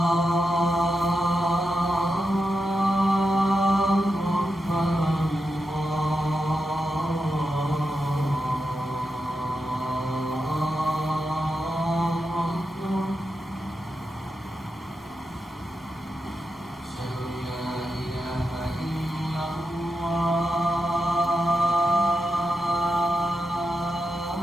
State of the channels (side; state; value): both; normal; correlation 0.88